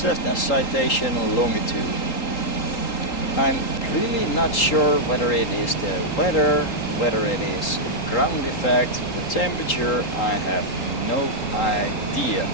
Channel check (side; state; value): right; late; 3.8 ms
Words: Citation Longitude. I'm really not sure whether it is the weather, whether it is ground effect, the temperature, I have no idea.